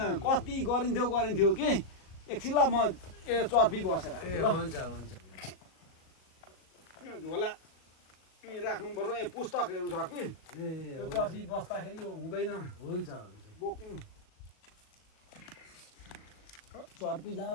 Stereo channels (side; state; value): right; late; 37 ms